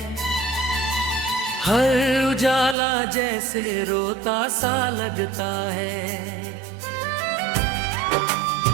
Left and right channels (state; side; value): drops out; left; at 2.8 s